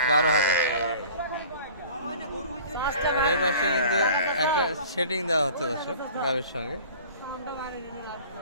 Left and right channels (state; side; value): inverted; both; correlation -0.44